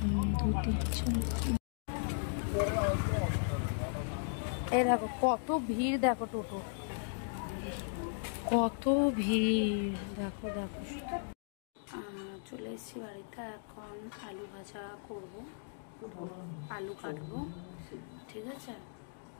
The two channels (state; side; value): silent; right; digital silence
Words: ধুতি। এই দেখো কত ভিড়, দেখো টোটো কত ভিড়, দেখো দেখো। চলে এসেছি বাড়িতে, এখন আলু ভাজা করব, আলু কাটবো, ঠিক আছে।